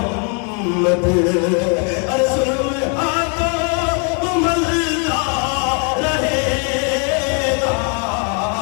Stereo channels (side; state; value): right; quieter; 38.5 dB